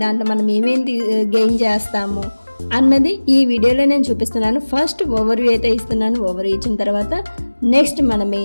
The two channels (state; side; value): inverted; both; correlation -1.00